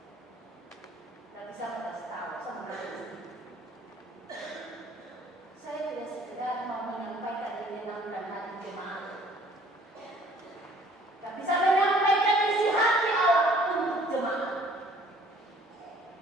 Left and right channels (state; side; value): normal; both; correlation 0.56